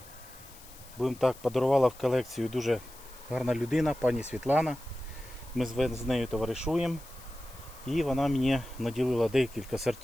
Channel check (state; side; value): noise; left; hiss, 20 dB below the sound